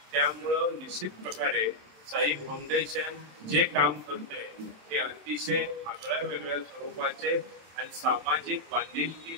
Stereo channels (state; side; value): late; left; 27 ms